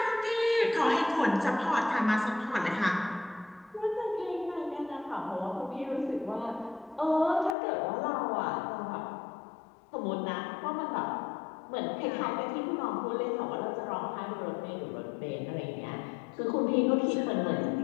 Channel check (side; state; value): right; drops out; at 7.6 s